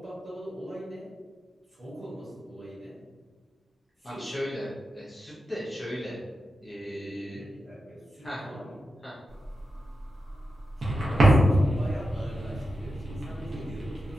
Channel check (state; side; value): normal; both; correlation 0.90